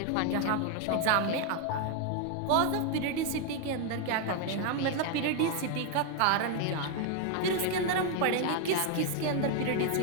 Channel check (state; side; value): different; both; correlation 0.01